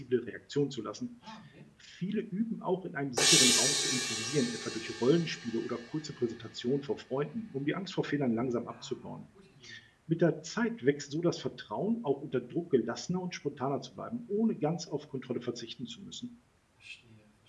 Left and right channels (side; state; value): both; identical; correlation 1.00